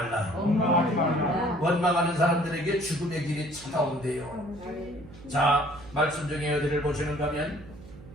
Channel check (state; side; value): noise; right; hum, 19 dB below the sound